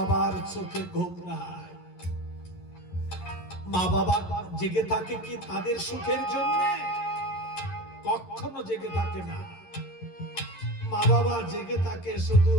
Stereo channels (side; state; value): right; late; 11 ms